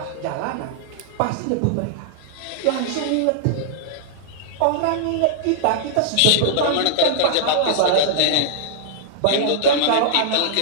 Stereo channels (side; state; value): both; different; correlation -0.01